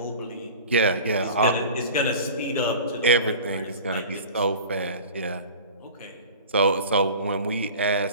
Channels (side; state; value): both; inverted; correlation -0.38